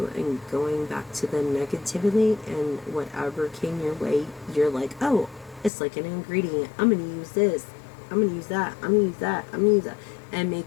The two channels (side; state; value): right; drops out; at 5.7 s